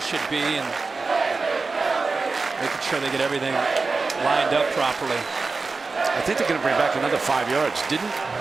be and making sure they get everything lined up properly. I think they're going to bring back another 5 yards. Didn't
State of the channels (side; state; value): left; quieter; 4.1 dB